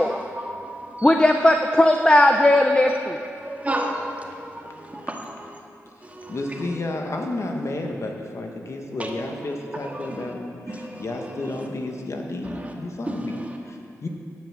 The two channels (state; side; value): normal; both; correlation 0.90